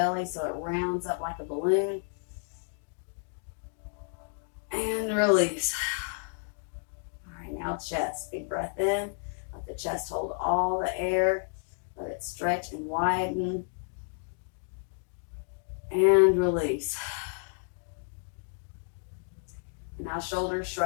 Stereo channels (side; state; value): right; silent; digital silence